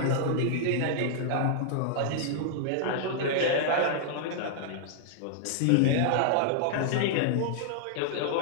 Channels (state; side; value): different; both; correlation -0.01